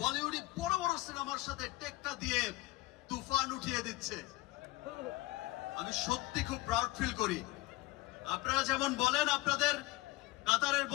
বলিউডি বড় বড় সিনেমার সাথে টেক্কা দিয়ে তুফান উঠিয়ে দিচ্ছে, আমি সত্যি খুব প্রাউড ফিল করি। আপনারা যেমন বলেন আপনাদের কাতারের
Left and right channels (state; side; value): quieter; right; 19.8 dB